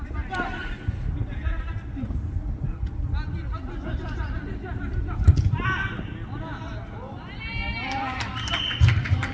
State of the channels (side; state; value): both; identical; correlation 1.00